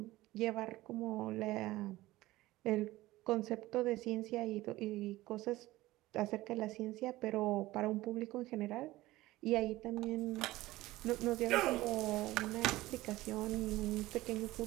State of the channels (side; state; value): left; quieter; 17.8 dB